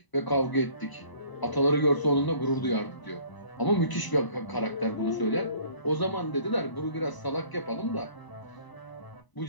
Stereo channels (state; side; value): late; right; 1.0 ms